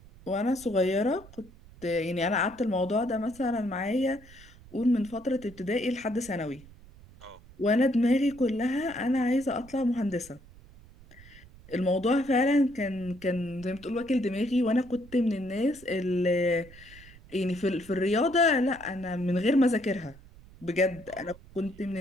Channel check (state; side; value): noise; right; rumble, 22 dB below the sound